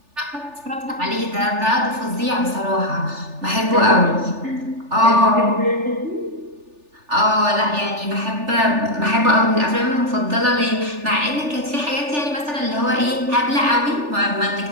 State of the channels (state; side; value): late; left; 3.4 ms